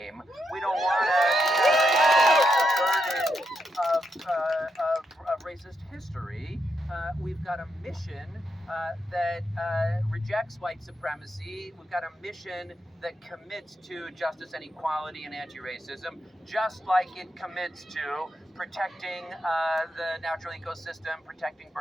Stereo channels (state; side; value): normal; both; correlation 0.82